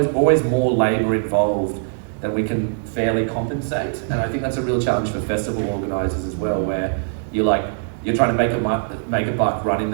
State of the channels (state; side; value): silent; left; digital silence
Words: more labour involved than we can fairly compensate. And I think that's a real challenge for festival organisers as well, where you're trying to make a buck running